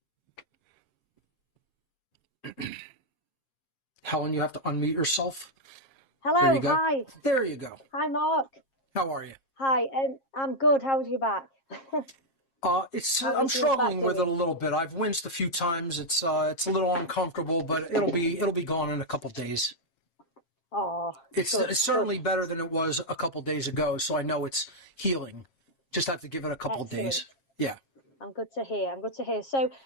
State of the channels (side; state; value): right; late; 7.4 ms